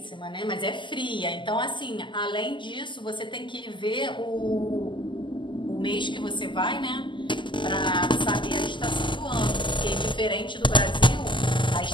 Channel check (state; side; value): late; right; 0.24 ms